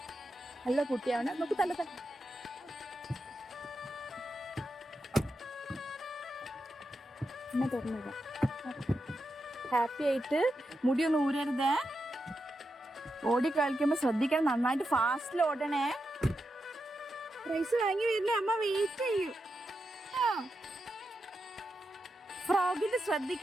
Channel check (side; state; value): both; normal; correlation 0.87